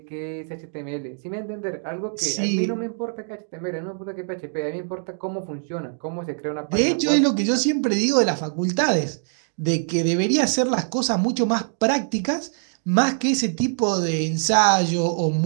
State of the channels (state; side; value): silent; left; 59 dB below the other